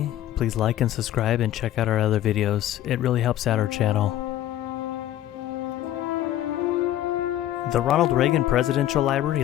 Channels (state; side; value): quieter; right; 12.9 dB